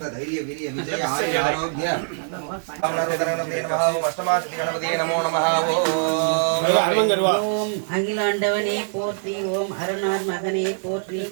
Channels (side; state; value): left; silent; digital silence